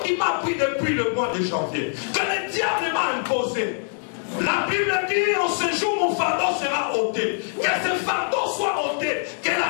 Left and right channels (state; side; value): silent; right; 63 dB below the other